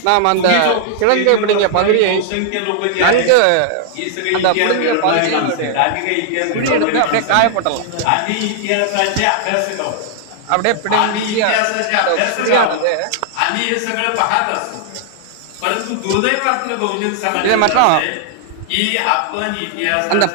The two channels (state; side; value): different; both; correlation -0.01